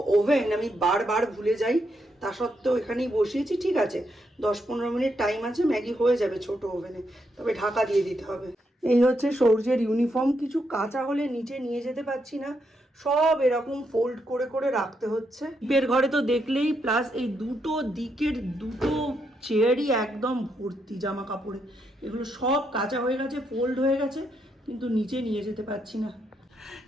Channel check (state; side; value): normal; both; correlation 0.79